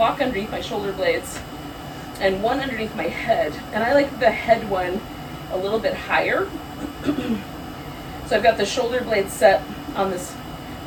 underneath my shoulder blades and one underneath my head. And I like the head one a little bit higher. So I've got the shoulder blade set on this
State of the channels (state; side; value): identical; both; correlation 1.00